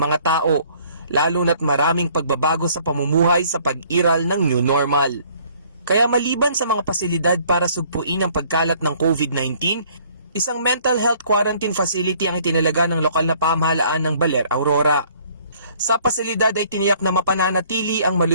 tao, lalo na't maraming pagbabago sa pamumuhay sa pag-iral ng new normal. Kaya maliban sa mga pasilidad para sugpuin ang pagkalat ng COVID-19, isang mental health quarantine facility ang itinalaga ng lokal na pamahalaan ng Baler, Aurora. Sa pasilidad ay tiniyak na mapananatili ang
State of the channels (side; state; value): both; inverted; correlation -0.59